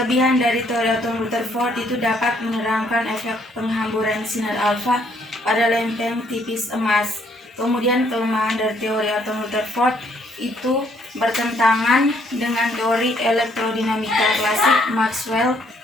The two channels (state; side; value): normal; both; correlation 0.67